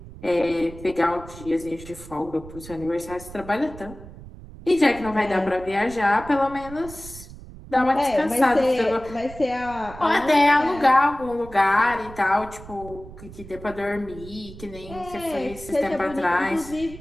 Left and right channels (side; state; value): right; noise; rumble, 16 dB below the sound